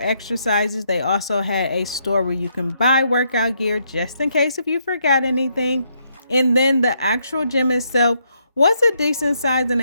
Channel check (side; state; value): both; inverted; correlation -0.75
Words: They also had a store where you can buy workout gear just in case if you forgot anything. And then the actual gym itself was a decent size and